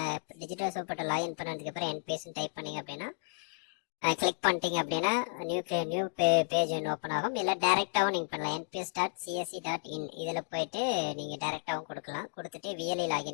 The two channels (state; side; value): silent; right; digital silence